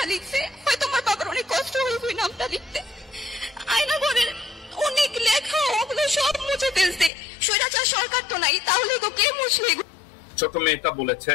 লিখছে, হয়তো আমার বাবার অনেক কষ্ট হয়েছে ওই নামটা লিখতে। আয়না ঘরের অনেক লেখা ওগুলো সব মুছে ফেলছে। স্বৈরাচার সরকার তো নাই, তাহলে তো কে মুছবে? ছোট মেয়েটা বলেছে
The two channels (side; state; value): right; drops out; at 7.1 s